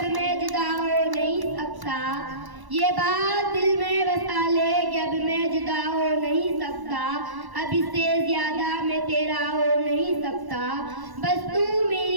میں جدا ہو نہیں سکتا، یہ بات دل میں بسا لے کہ اب میں جدا ہو نہیں سکتا، اب اس سے زیادہ میں تیرا ہو نہیں سکتا، بس تو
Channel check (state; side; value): late; left; 1.0 ms